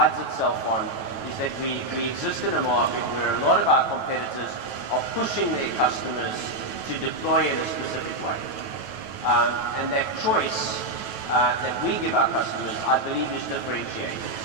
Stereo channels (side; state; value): right; late; 9.2 ms